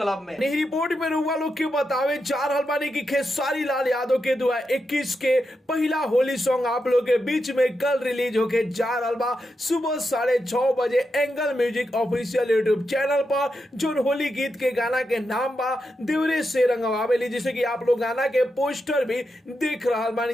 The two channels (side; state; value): both; normal; correlation 0.86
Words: में। नहीं रिपोर्ट में रुआ लोग के बतावे जा रहल बानी कि खेसारी लाल यादव के 2021 के पहला होली सॉन्ग आप लोग के बीच में कल रिलीज होके जा रहल बा सुबह 6:30 बजे angle music official YouTube channel पर। जो होली गीत के गाना के नाम बा देवरे से रंगवावेली, जिसे कि आप लोग गाना के पोस्टर भी देख रहल